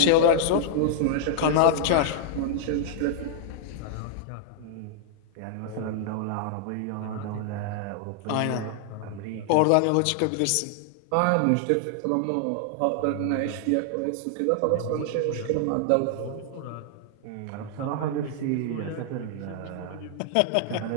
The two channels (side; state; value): both; different; correlation -0.01